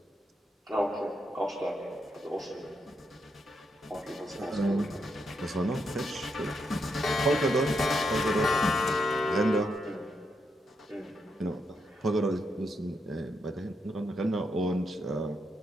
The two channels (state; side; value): normal; both; correlation 0.81